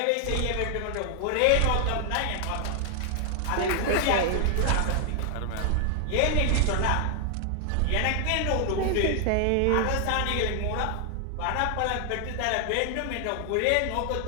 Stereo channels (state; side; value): different; both; correlation 0.00